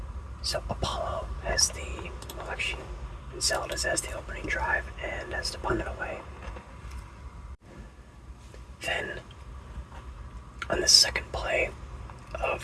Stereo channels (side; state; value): both; identical; correlation 1.00